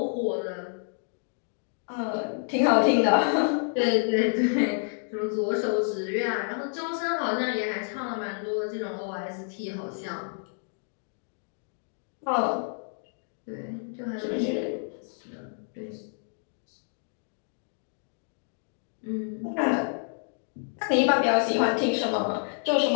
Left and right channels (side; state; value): right; silent; 59 dB below the other